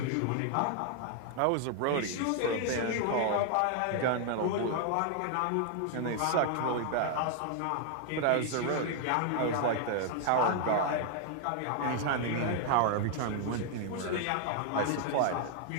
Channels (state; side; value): different; both; correlation 0.00